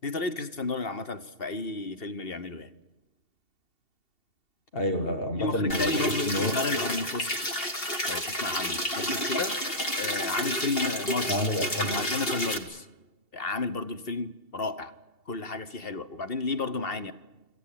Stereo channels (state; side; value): late; right; 2.7 ms